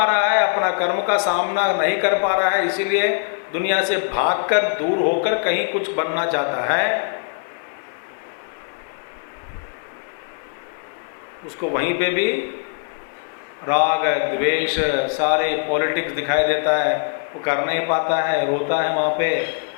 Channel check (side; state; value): right; silent; 64 dB below the other